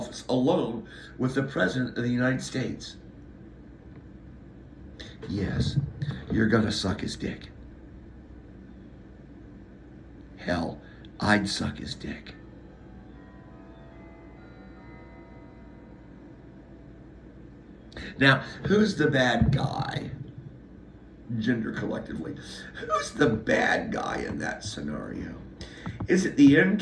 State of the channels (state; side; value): identical; both; correlation 1.00